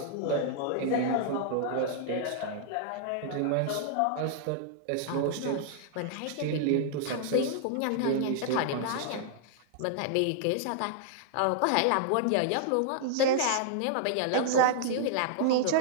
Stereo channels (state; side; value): different; both; correlation -0.01